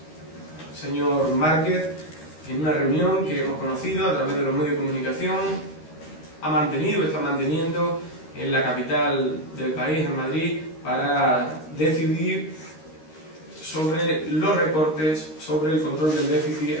señor Márquez, en una reunión que hemos conocido a través de los medios de comunicación, está manteniendo en la capital del país, en Madrid, para decidir sobre los recortes, sobre el control del déficit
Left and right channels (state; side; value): late; right; 13 ms